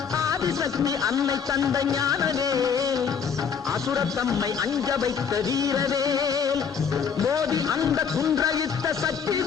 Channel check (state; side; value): quieter; right; 6.8 dB